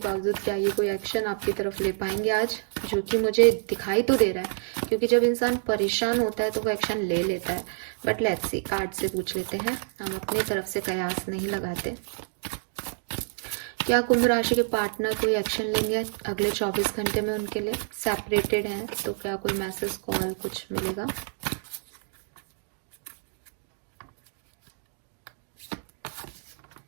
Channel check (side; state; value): left; silent; digital silence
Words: क्या ये कोई एक्शन आपकी तरफ ले पाएंगे आज, जो कि मुझे दिखाई तो दे रहा है, क्योंकि जब इंसान परेशान होता है तो वो एक्शन ले लेता है। बट लेट्स सी, कार्ड से पूछ लेते हैं, हम अपनी तरफ से कयास नहीं लगाते। क्या कुंभ राशि के पार्टनर कोई एक्शन लेंगे अगले 24 घंटे में उनके लिए? सेपरेटेड हैं तो क्या कोई मैसेज कॉल कुछ मिलेगा?